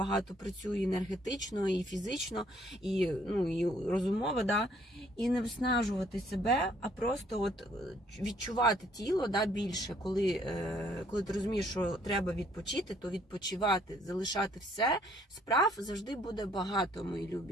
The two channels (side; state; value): both; normal; correlation 0.64